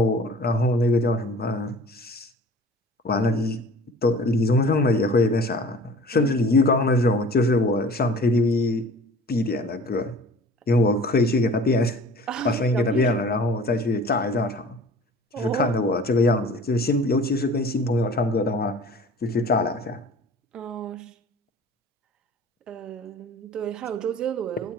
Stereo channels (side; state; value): both; normal; correlation 0.45